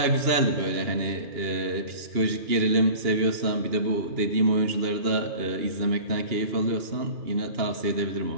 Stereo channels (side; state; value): left; late; 2.8 ms